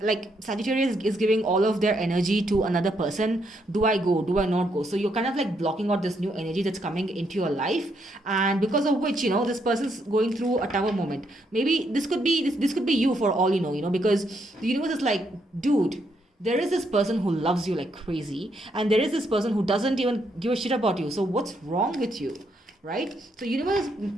Sagittarius is giving all of their energy to another person. Do I go? Do I not go? So you're kind of blocking out this new energy that's coming into your life, and because of which, this person's going through a tower moment. Maybe this could be you, for all you know, because the universe is like, dude, there is this person who loves you like crazy, and there is this person who doesn't even give a shit about you. So what's wrong with you, right? So universe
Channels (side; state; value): both; normal; correlation 0.76